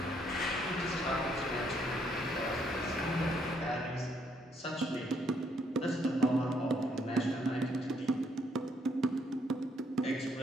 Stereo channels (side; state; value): both; normal; correlation 0.71